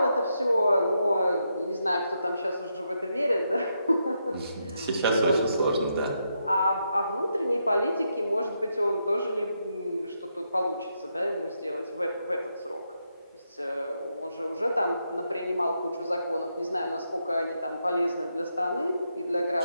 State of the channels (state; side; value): inverted; both; correlation -0.81